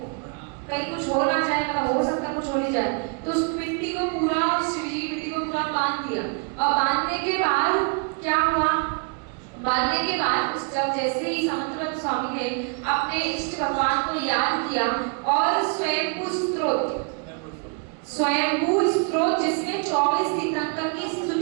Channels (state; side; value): quieter; left; 36.9 dB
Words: कुछ हो ना जाए, मतलब हो सकता कुछ हो नहीं जाए। तो उस मिट्टी को पूरा बांध दिया और बांधने के बाद क्या हुआ? बांधने के बाद उस जब जैसे ही समंतभद्र स्वामी ने अपने इष्ट भगवान को याद किया और स्वयंभू स्त्रोत जिसमें 24 तीर्थंकर की